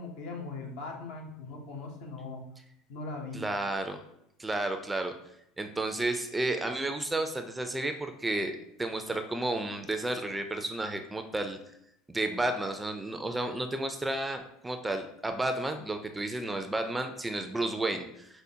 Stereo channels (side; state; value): both; normal; correlation 0.80